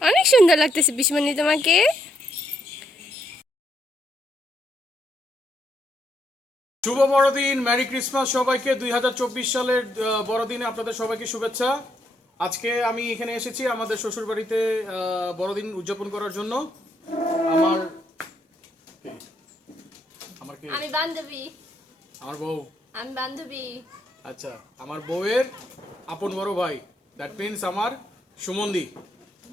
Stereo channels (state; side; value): normal; both; correlation 0.75